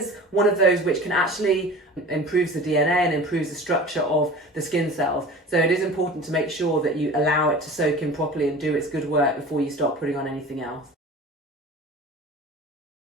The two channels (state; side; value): normal; both; correlation 0.38